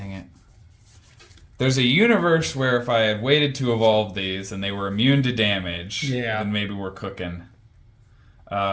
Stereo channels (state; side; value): identical; both; correlation 1.00